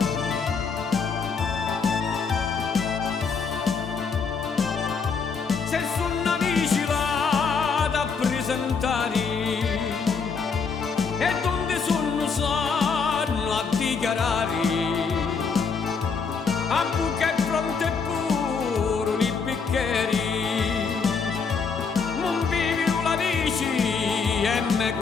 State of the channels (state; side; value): quieter; right; 5.4 dB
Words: Se sono amici vado a presentare e donde sono sanno a dichiarare, a buca e fronte e puro li bicchieri, non vivi la dici e me